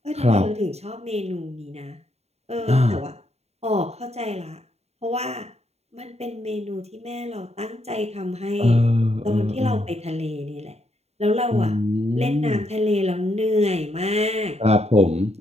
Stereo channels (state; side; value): late; left; 0.31 ms